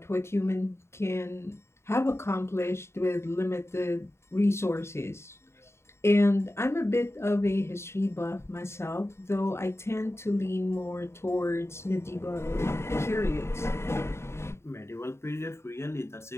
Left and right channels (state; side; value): late; right; 0.13 ms